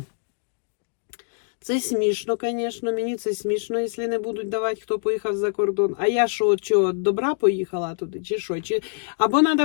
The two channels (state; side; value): silent; right; digital silence